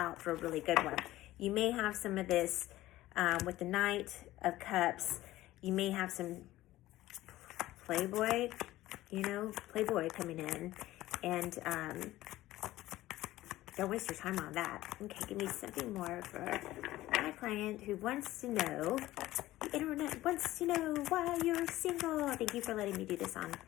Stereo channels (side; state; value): right; quieter; 16.1 dB